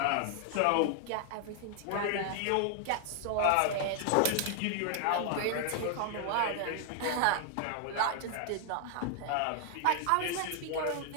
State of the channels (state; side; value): different; both; correlation 0.00